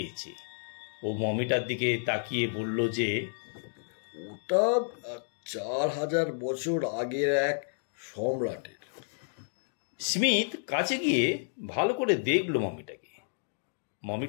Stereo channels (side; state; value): right; silent; digital silence